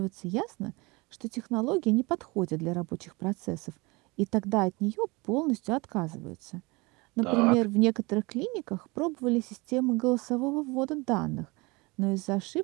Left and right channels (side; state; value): left; quieter; 25.5 dB